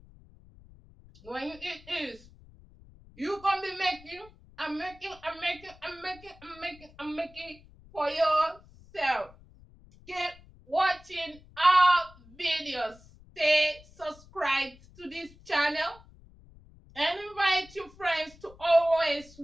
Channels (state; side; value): noise; left; rumble, 24 dB below the sound